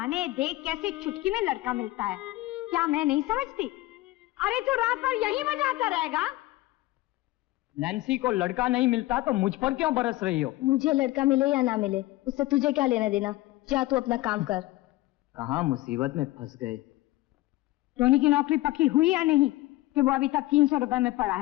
देख कैसे चुटकी में लड़का मिलता है। क्या मैं नहीं समझती? अरे तू रात भर यहीं बजाता रहेगा? नैन्सी को लड़का नहीं मिलता तो मुझ पर क्यों बरस रही हो? मुझे लड़का मिले या ना मिले, उससे तुझे क्या लेना देना? जा तू अपना काम कर। कहाँ मुसीबत में फंस गए। टोनी की नौकरी पक्की हुई या नहीं कि वो अभी तक 300 रुपए में पड़ा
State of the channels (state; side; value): quieter; right; 18.3 dB